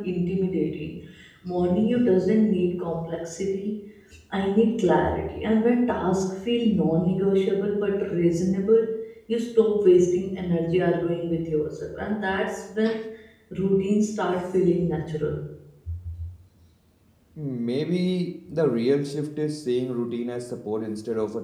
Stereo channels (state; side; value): identical; both; correlation 1.00